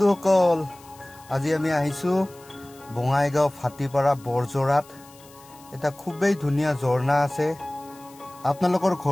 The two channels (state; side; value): noise; left; hiss, 24 dB below the sound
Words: আজি আমি আহিছো বঙাইগাঁও ফাটিপাৰা বৰজৰাত এটা খুবেই ধুনিয়া ঝৰ্ণা আছে আপোনালোকৰ